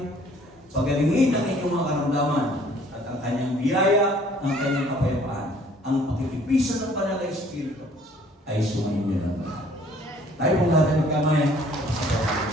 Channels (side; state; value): both; normal; correlation 0.57